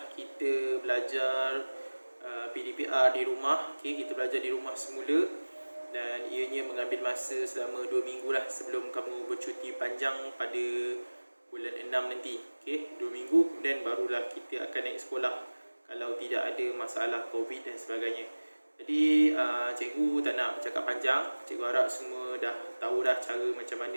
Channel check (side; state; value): both; inverted; correlation -1.00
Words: kita belajar PDPR di rumah. Okey, kita belajar di rumah semula dan ianya mengambil masa selama 2 minggu lah sebelum kamu bercuti panjang pada bulan 6 nanti. Okey, 2 minggu kemudian barulah kita akan naik sekolah kalau tidak ada masalah COVID dan sebagainya. Jadi cikgu tak nak bercakap panjang. Cikgu harap semua dah tahu dah cara macam